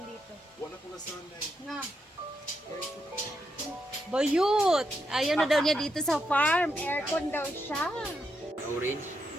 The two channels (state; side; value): normal; both; correlation 0.82